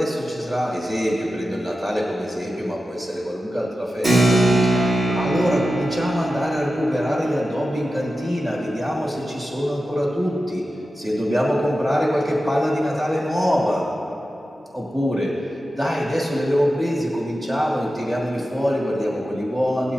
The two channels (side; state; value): both; normal; correlation 0.92